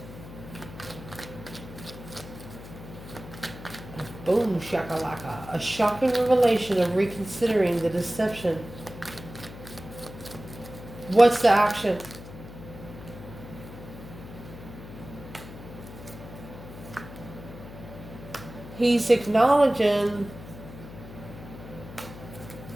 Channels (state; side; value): noise; left; hum, 14 dB below the sound